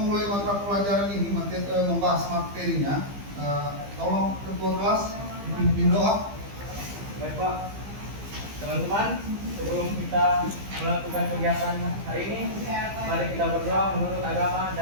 mata pelajaran ini, membahas materinya, tolong ketua kelas dipimpin doa. Baik Pak, teman-teman, sebelum kita melakukan kegiatan hari ini, mari kita berdoa menurut agama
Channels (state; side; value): late; left; 15 ms